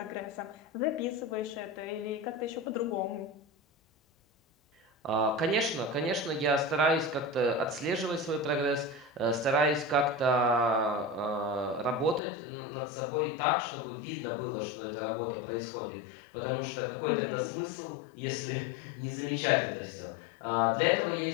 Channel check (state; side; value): drops out; right; at 12.2 s